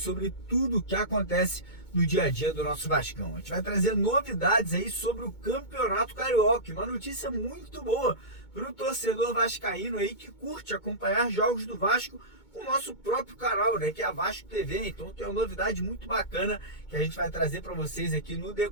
tudo o que acontece no dia a dia do nosso Vascão. A gente vai trazer novidades aí sobre o Campeonato Carioca, uma notícia muito boa para o torcedor vascaíno aí que curte acompanhar jogos do Vasco com o nosso próprio canal, né, que é a Vasco TV. Então tem uma novidade muito bacana que a gente vai trazer para vocês aqui no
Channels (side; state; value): right; late; 2.2 ms